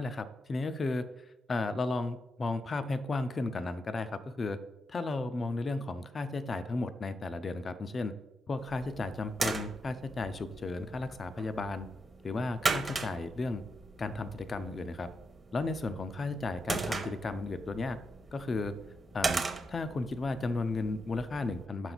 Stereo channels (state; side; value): normal; both; correlation 0.86